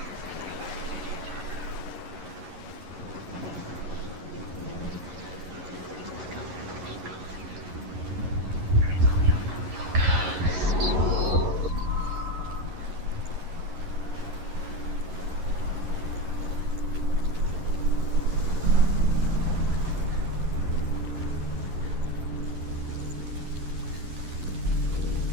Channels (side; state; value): left; late; 11 ms